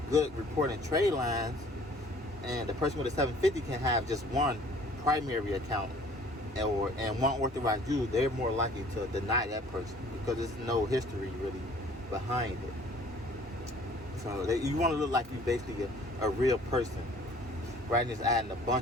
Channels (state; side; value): normal; both; correlation 0.53